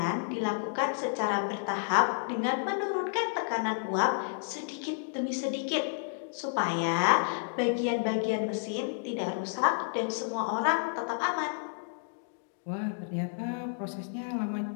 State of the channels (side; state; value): right; silent; digital silence